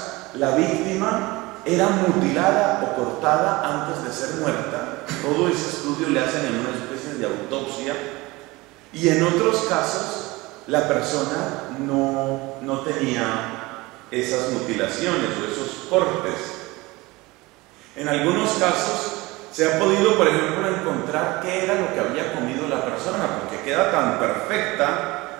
la víctima era mutilada o cortada antes de ser muerta. Todo ese estudio le hacen en una especie de autopsia. Y en otros casos, la persona no tenía esas mutilaciones o esos cortes. En algunos casos, se ha podido, por ejemplo, encontrar qué era lo que había comido la persona, porque queda tan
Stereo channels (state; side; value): quieter; left; 21.9 dB